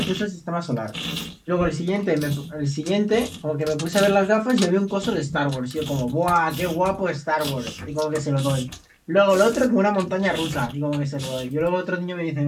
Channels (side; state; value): both; identical; correlation 1.00